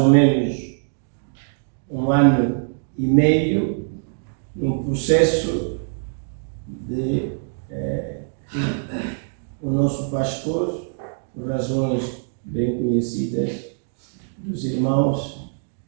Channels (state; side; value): silent; left; digital silence